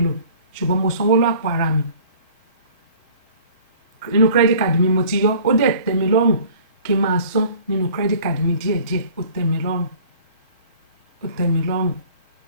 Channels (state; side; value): inverted; both; correlation -0.50